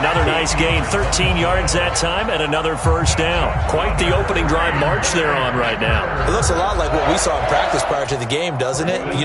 nice gain, 13 yards that time, and another 1st down. Quite the opening drive march they're on right now. It looks a lot like what we saw in practice prior to the game, doesn't it?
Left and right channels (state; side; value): identical; both; correlation 1.00